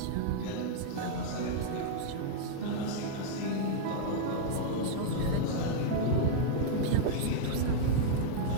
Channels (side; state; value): both; different; correlation -0.02